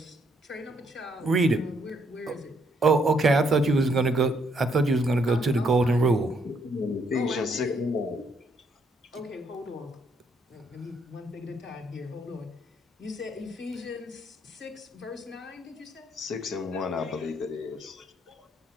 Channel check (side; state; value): both; normal; correlation 0.71